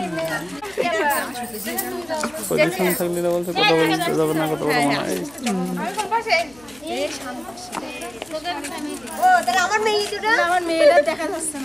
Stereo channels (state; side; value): noise; left; hum, 26 dB below the sound